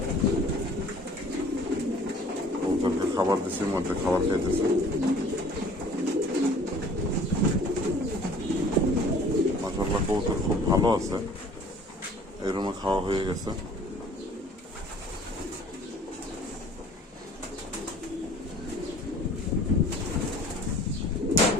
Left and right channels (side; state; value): both; normal; correlation 0.51